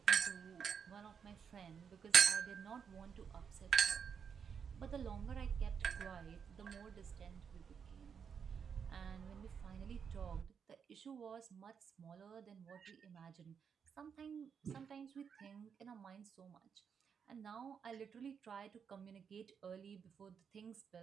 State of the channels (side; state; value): left; quieter; 6.9 dB